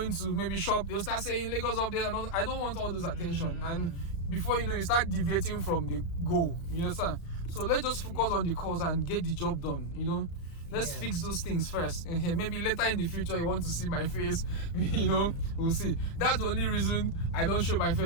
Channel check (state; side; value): late; right; 35 ms